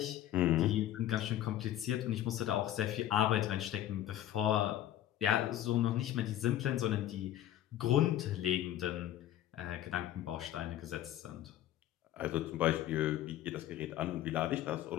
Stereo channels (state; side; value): quieter; right; 12.5 dB